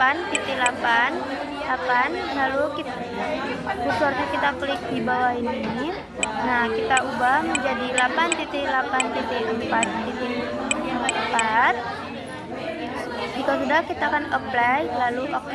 lalu kursornya kita klik di bawah ini. Nah, kita ubah menjadi 8.8.4. Jika sudah, kita akan apply lalu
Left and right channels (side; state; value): both; identical; correlation 1.00